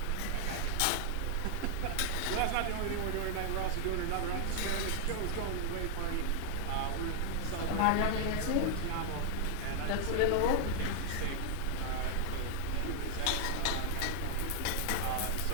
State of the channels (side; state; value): both; different; correlation 0.00